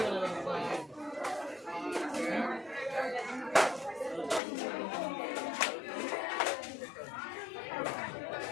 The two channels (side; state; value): right; drops out; at 4.4 s